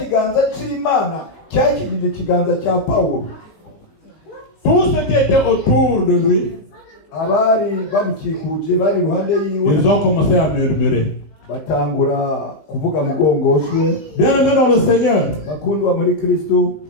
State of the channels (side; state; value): right; late; 20 ms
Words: cy'Imana cyakigije ikiganza cya Paulo. Tout ce qui était autour de lui, abari bamukikuje bari iruhande yiwe, ils ont commencé à murmurer. Batangura kuvuga mugongoswe. Bien-aimé dans le Seigneur, bakundwa muri Kristo,